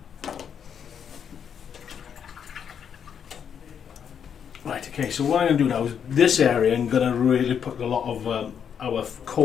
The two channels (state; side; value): quieter; right; 7.8 dB